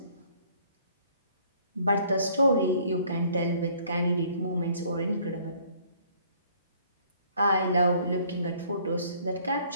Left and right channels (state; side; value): inverted; both; correlation -0.60